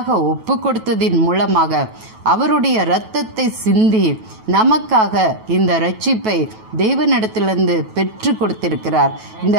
ஒப்பு கொடுத்ததின் மூலமாக அவருடைய இரத்தத்தை சிந்தி நமக்காக இந்த இரட்சிப்பை தேவனிடத்திலிருந்து பெற்று கொடுத்திருக்கிறார். இந்த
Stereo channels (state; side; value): late; left; 9.2 ms